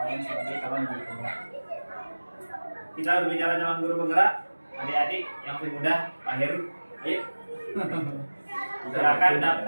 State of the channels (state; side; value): inverted; both; correlation -1.00